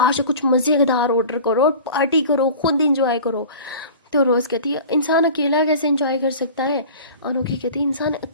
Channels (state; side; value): inverted; both; correlation -0.39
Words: से कुछ मज़ेदार ऑर्डर करो और पार्टी करो, खुद इंजॉय करो। तो रोज़ कहती है इंसान अकेला कैसे इंजॉय कर सकता है? अनोखी कहती है इंसान